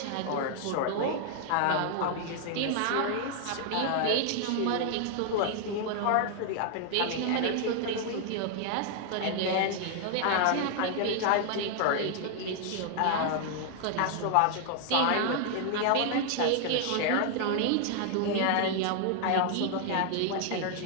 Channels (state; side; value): different; both; correlation 0.00